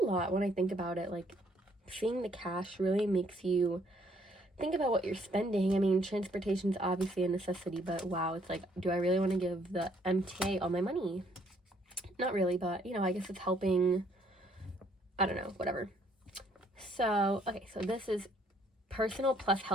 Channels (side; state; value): both; normal; correlation 0.66